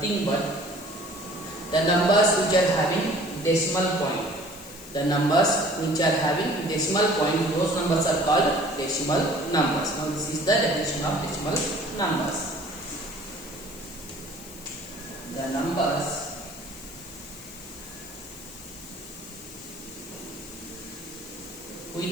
but the numbers which are having decimal point. The numbers which are having decimal point, those numbers are called decimal numbers. Now this is the definition of decimal numbers. The numbers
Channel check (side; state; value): left; noise; hiss, 17 dB below the sound